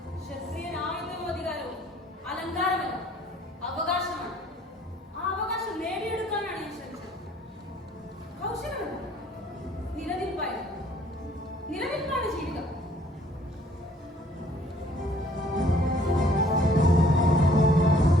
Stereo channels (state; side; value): normal; both; correlation 0.59